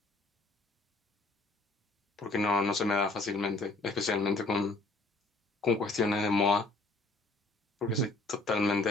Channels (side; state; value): right; quieter; 3.2 dB